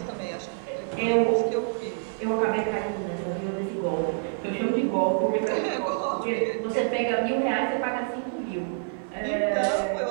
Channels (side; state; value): left; silent; digital silence